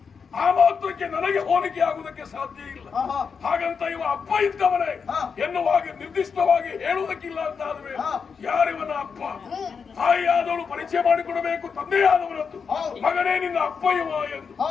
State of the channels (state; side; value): quieter; right; 5.9 dB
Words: ಆ ಮಾತ್ರಕ್ಕೆ ನನಗೆ ಹೋಲಿಕೆ ಆಗುವುದಕ್ಕೆ ಸಾಧ್ಯ ಇಲ್ಲ. ಹಾಗಂತ ಇವ ಅಪ್ಪ ಇದ್ದವನೇ ಎನ್ನುವಾಗ ನಿರ್ದಿಷ್ಟವಾಗಿ ಹೇಳುವುದಕ್ಕಿಲ್ಲ ಅಂತ ಆದ್ರೆ ಯಾರಿವನ ಅಪ್ಪ? ತಾಯಿಯಾದವಳು ಪರಿಚಯ ಮಾಡಿಕೊಡಬೇಕು ತಂದೆಯಾದವರದ್ದು. ಮಗನೇ ನಿನ್ನ ಅಪ್ಪ ಇವ ಎಂದು.